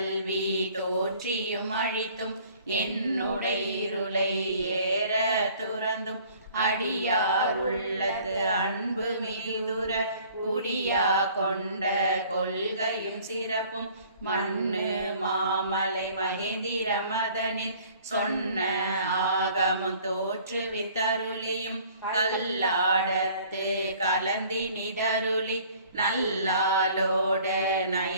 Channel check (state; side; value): inverted; both; correlation -0.54